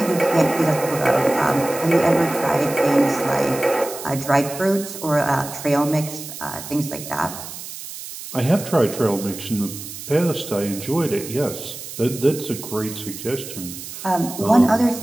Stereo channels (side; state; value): right; noise; hiss, 11 dB below the sound